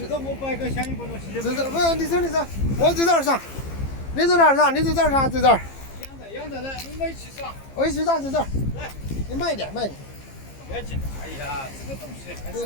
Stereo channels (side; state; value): right; late; 15 ms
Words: 实我摆个相应不东西。不是，你走，我在这儿上，你在哪儿上？你在这儿上，在这儿。养着来，我们一起上。我一起上，在这儿。来，你慢一点，慢一点。不要紧。哎呀，这个东西还是